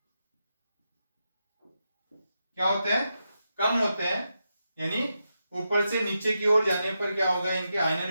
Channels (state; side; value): inverted; both; correlation -0.87